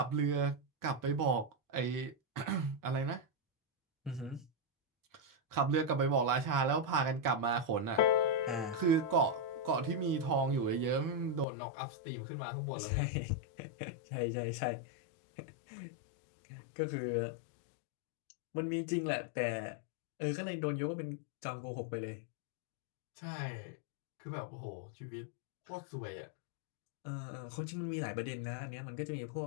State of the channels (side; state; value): right; drops out; at 11.5 s